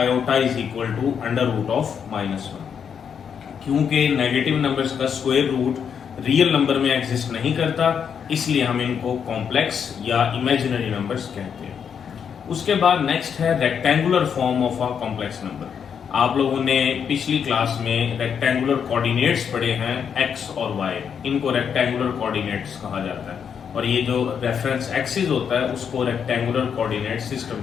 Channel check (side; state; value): right; quieter; 7.4 dB